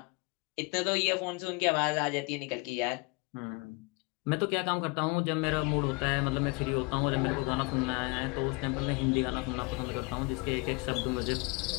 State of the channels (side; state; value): right; quieter; 28.7 dB